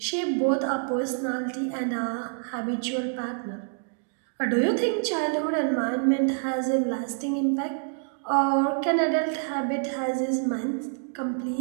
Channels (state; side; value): silent; left; digital silence